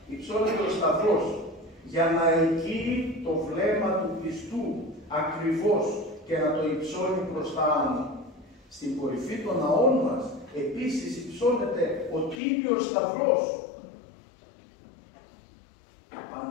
υψώνεται ο Σταυρός για να ελκύει το βλέμμα του πιστού ακριβώς και να το υψώνει προς τα άνω. Στην κορυφή των ναών μας επίσης υψώνεται ο Τίμιος Σταυρός.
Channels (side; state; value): right; drops out; at 12.4 s